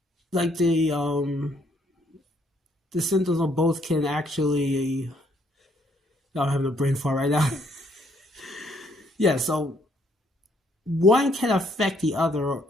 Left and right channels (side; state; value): both; normal; correlation 0.68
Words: like the symptoms of both can actually. I'm having a brain fart right now. Yeah, so one can affect the other,